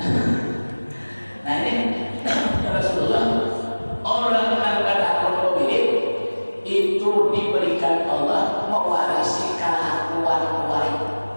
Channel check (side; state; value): both; inverted; correlation -1.00